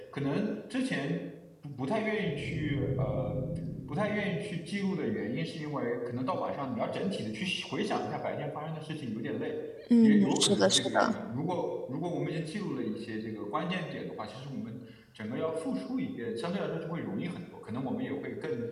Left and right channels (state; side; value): identical; both; correlation 1.00